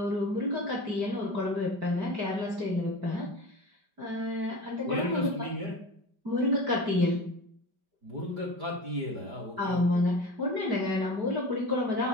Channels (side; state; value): left; late; 5.1 ms